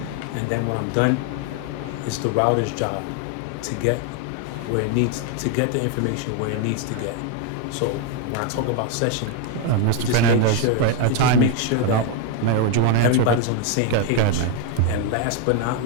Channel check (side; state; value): both; different; correlation 0.01